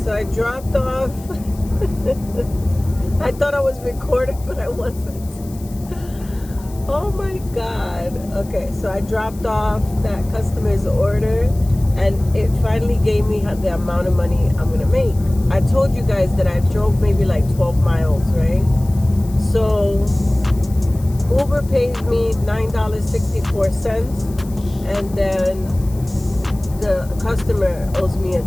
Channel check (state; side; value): noise; left; hiss, 22 dB below the sound